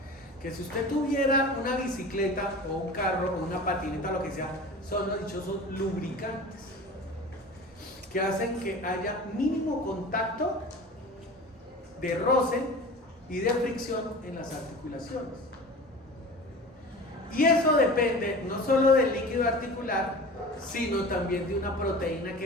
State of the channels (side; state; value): both; normal; correlation 0.37